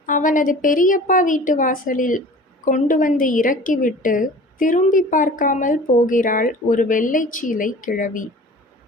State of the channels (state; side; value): normal; both; correlation 0.43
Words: அவனது பெரியப்பா வீட்டு வாசலில் கொண்டு வந்து இறக்கிவிட்டு திரும்பி பார்க்காமல் போகிறாள் ஒரு வெள்ளைச்சீலை கிழவி.